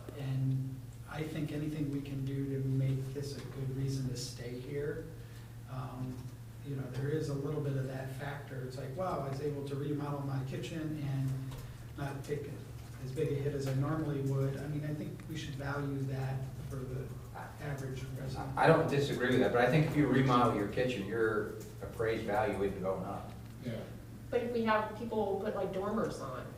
I think anything we can do to make this a good reason to stay here, there is a little bit of that factor. It's like, wow, I was able to remodel my kitchen and not take as big a hit as I normally would. I mean, I think we should value that for the average resident. I don't disagree with that, but I think if you remodel your kitchen, your appraised value isn't going up. Yeah. But if we have people put like dormers on,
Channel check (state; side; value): identical; both; correlation 1.00